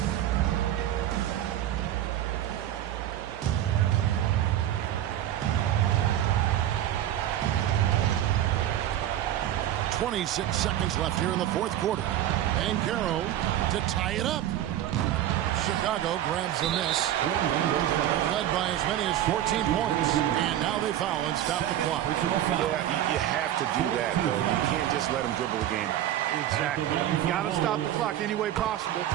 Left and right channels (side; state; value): left; quieter; 12.1 dB